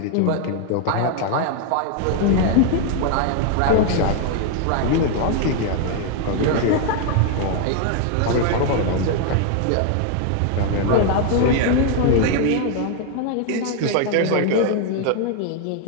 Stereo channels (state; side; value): different; both; correlation 0.01